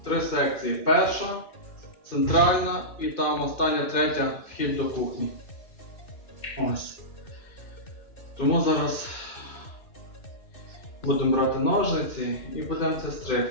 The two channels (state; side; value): late; right; 2.4 ms